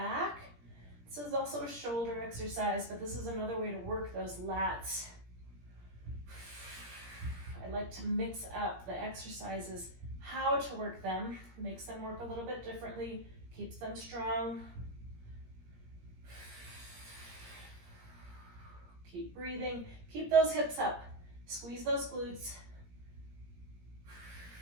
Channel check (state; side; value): late; left; 17 ms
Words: This is also a shoulder exercise, but this is another way to work those lats. I like to mix up the exercises, how to work them, makes them work a little bit differently, keeps them strong. Keep breathing, keep those hips up, squeeze those glutes.